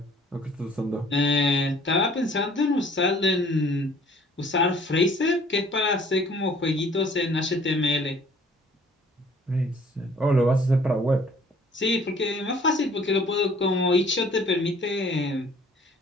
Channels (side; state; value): both; normal; correlation 0.55